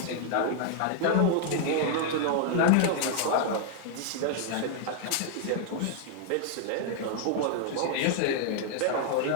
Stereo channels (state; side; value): different; both; correlation 0.00